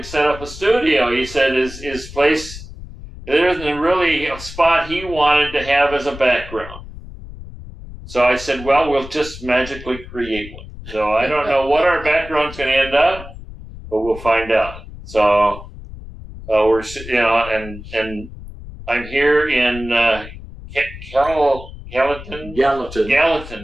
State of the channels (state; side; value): noise; left; rumble, 14 dB below the sound